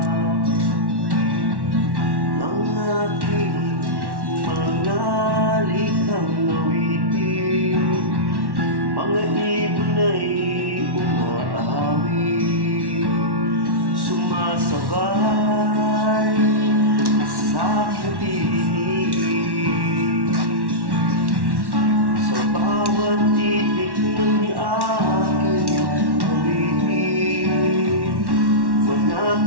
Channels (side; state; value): left; late; 1.1 ms